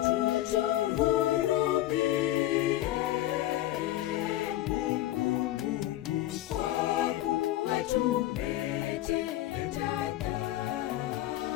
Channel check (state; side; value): quieter; right; 14.7 dB